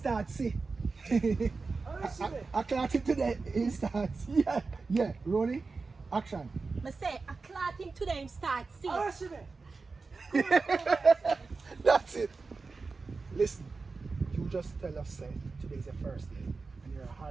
see. How she be? I clock it today and start. Yeah. Rolling. Action. Me say I clap him today and start see. How she be? That's it. Listen, you just tell us say today's your first day and you're a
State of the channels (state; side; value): quieter; left; 4.2 dB